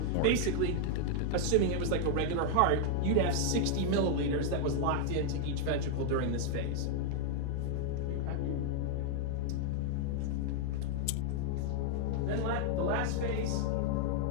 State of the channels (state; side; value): different; both; correlation 0.00